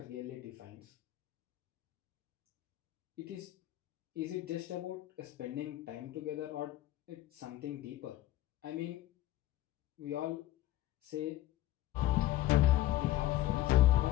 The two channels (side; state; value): right; quieter; 14.9 dB